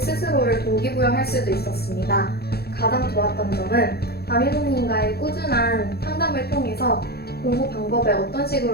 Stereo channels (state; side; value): late; right; 0.46 ms